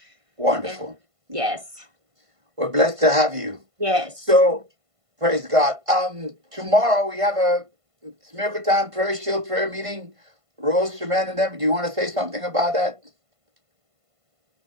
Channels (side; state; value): left; late; 1.5 ms